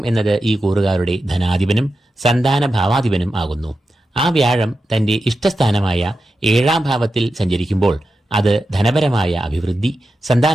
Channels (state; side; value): normal; both; correlation 0.90